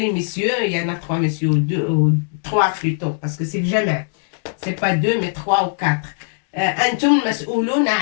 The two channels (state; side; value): silent; right; digital silence